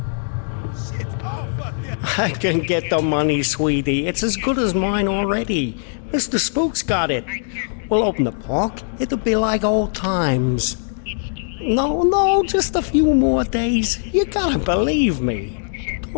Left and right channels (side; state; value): right; silent; digital silence